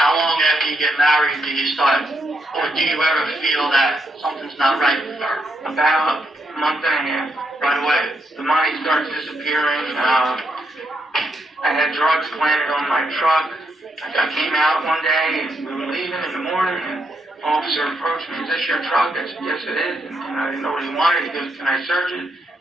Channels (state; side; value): normal; both; correlation 0.79